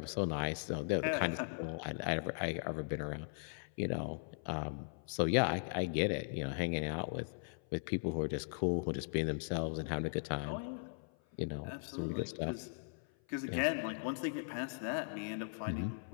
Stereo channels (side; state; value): right; silent; 52 dB below the other